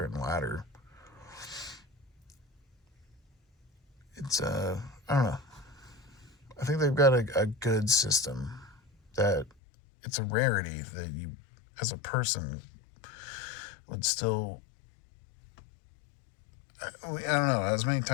and ladder. It's, I don't know. I think they've got a good system that it's a rarity that you, as a person, would still. I don't know. As many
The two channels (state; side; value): drops out; right; at 9.5 s